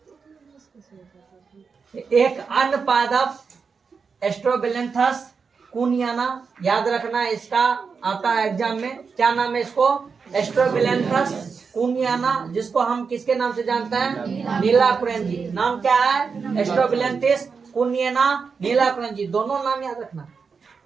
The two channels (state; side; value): quieter; left; 5.4 dB